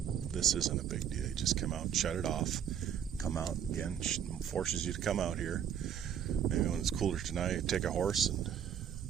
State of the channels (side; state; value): left; quieter; 8.9 dB